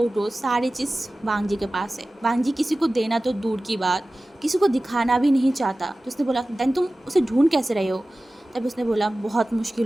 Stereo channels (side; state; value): both; normal; correlation 0.97